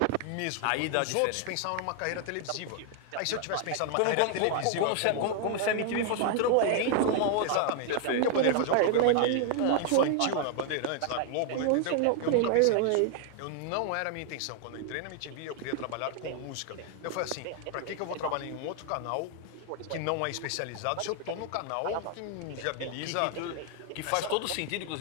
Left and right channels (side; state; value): both; different; correlation 0.00